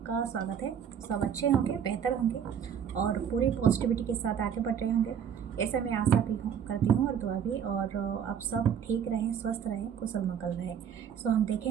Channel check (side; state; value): left; quieter; 8.2 dB